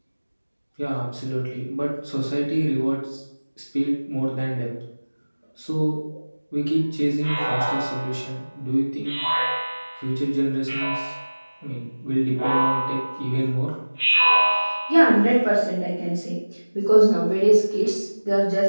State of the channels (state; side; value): inverted; both; correlation -1.00